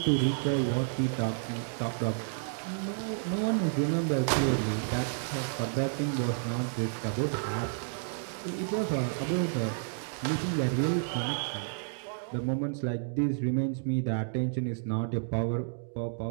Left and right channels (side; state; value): left; silent; digital silence